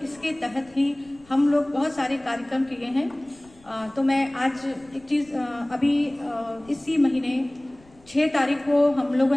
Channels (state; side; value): noise; left; rumble, 28 dB below the sound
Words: इसके तहत ही हम लोग बहुत सारे कार्यक्रम किए हैं। तो मैं आज एक चीज़ अभी इसी महीने 6 तारीख को हम लोगों